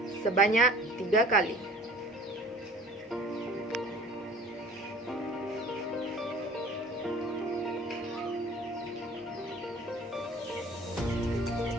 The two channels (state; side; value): normal; both; correlation 0.47